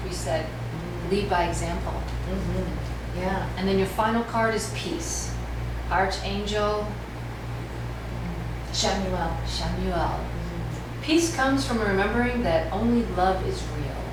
we said, lead by example. Yeah. And then your final card is Peace. Archangel Shamuel. Peace comes from remembering that only love is real.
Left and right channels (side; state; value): both; identical; correlation 1.00